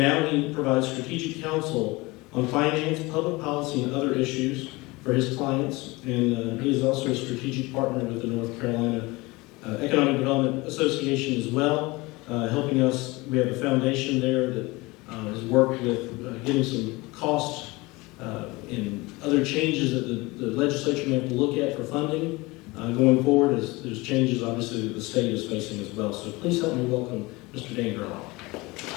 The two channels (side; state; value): right; quieter; 23.0 dB